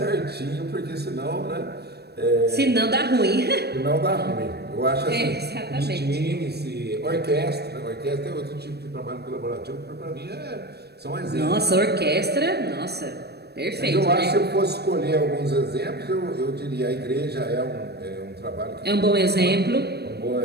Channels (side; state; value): left; late; 0.47 ms